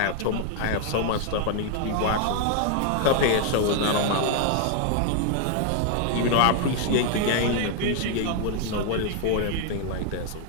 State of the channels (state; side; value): different; both; correlation 0.00